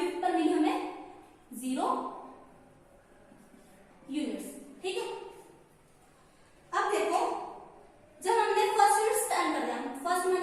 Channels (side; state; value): both; identical; correlation 1.00